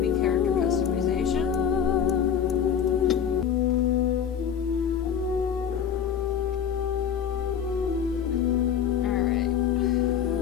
be character customization.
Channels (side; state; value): right; quieter; 8.2 dB